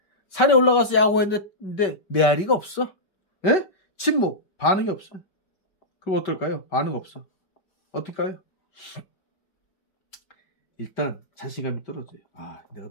산에 올라가서 야구했는데 메아리가 없어. 예? 침묵. 반응이 없어. 그럼 어떨까요? 반응 없어. 어떨까요? 일단 자신감이 떨어져요. 아, 내가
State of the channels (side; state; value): right; late; 5.2 ms